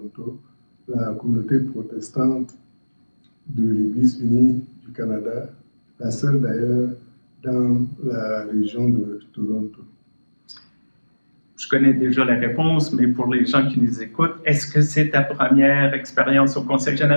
la communauté protestante de l'Église unie du Canada, la seule d'ailleurs dans la région de Toronto. Je connais déjà la réponse, mais pour les gens qui nous écoutent, est-ce que c'est ta première expérience au Conseil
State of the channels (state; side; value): inverted; both; correlation -1.00